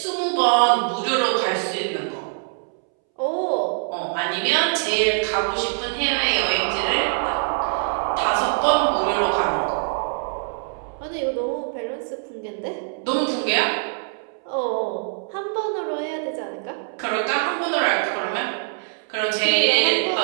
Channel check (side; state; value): left; silent; 63 dB below the other